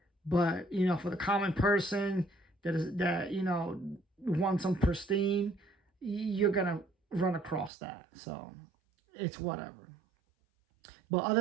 But, you know, for the common person that you know, wants some pristine, you're going to run across that. So, it's whatever. But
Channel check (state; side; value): drops out; left; at 7.7 s